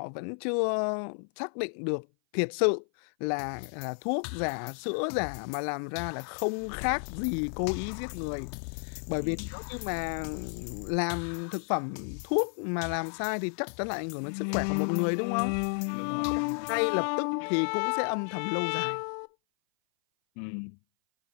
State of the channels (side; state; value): right; silent; 55 dB below the other